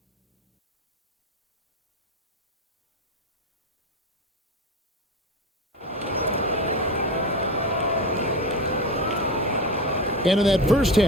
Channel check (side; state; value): both; normal; correlation 0.23